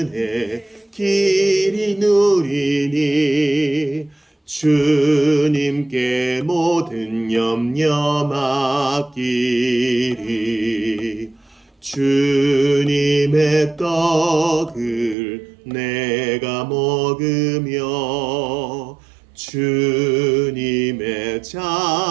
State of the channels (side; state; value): left; drops out; at 15.2 s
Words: 길이 누리니 주님께 모든 염려 맡기리 주님의 떡을 내가 먹으며 주님의